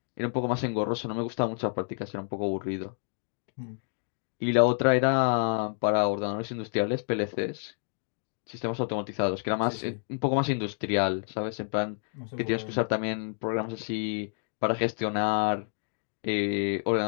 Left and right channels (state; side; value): silent; right; digital silence